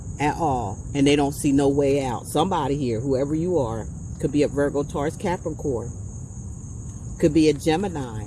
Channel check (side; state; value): both; identical; correlation 1.00